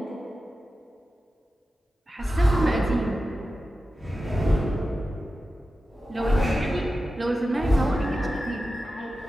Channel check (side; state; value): both; normal; correlation 0.93